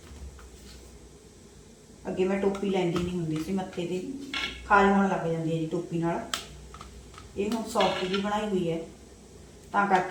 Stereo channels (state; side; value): identical; both; correlation 1.00